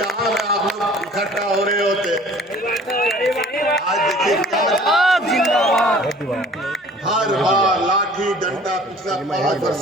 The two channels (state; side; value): normal; both; correlation 0.49